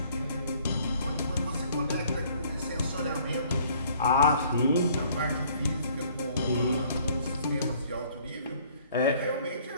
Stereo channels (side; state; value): both; inverted; correlation -0.58